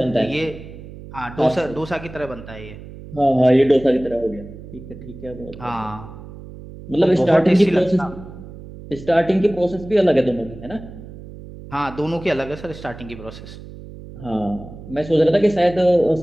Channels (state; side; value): noise; right; hum, 15 dB below the sound